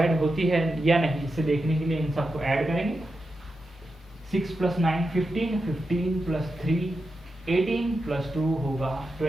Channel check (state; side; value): normal; both; correlation 0.89